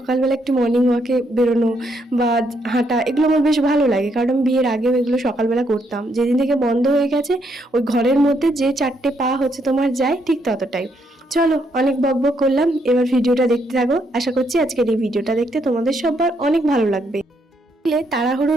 একটু মর্নিং ওয়াকে বেরোনো বা হাঁটা এগুলো আমার বেশ ভালো লাগে, কারণ আমি বিয়ের আগেও এগুলো সকালবেলা করতাম। যেদিন থেকে বন্ধ হয়ে গেছে, ওই ঘরের মধ্যে যে 4টে পা হচ্ছে তোমার যায়, ঠিক ততটাই। চলো, অনেক বকবক করলাম, এবার ভিডিওটা দেখতে থাকো। আশা করছি আজকের এই ভিডিওটা দেখতে তোমাদের সবার অনেক ভালো লাগবে।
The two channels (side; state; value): both; normal; correlation 0.75